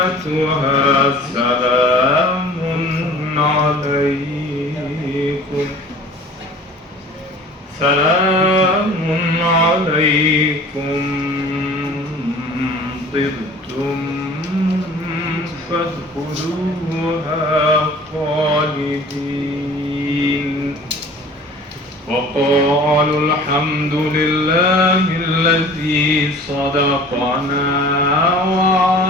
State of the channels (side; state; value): both; normal; correlation 0.45